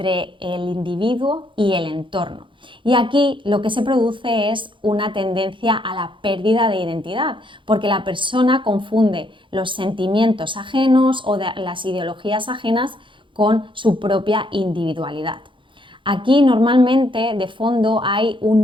el individuo y el entorno. Y aquí lo que se produce es una tendencia a la pérdida de identidad, porque la persona confunde los sentimientos ajenos o las ideologías ajenas con su propia individualidad. Aquí normalmente de fondo hay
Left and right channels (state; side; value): late; left; 0.24 ms